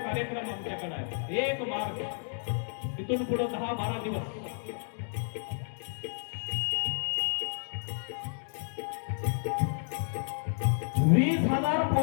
कार्यक्रम आमच्याकडे आहे. 1 मार्च इथून पुढे 10-12 दिवस. वीस 20,000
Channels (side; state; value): right; silent; digital silence